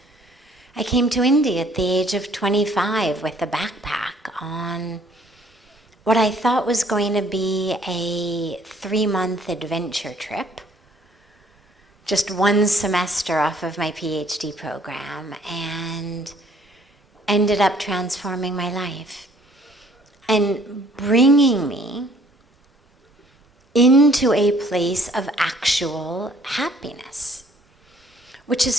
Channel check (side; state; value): both; normal; correlation 0.60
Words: I came to India at the age of 25 with a backpack on what I thought was going to be a 3-month adventure trip, just one semester off of my PhD program, and ended up transforming my life and bringing me into a place of actual happiness. Which